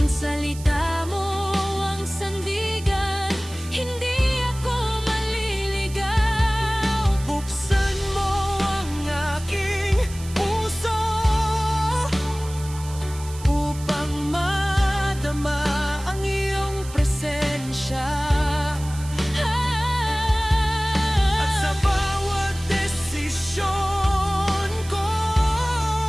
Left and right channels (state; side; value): noise; right; hiss, 16 dB below the sound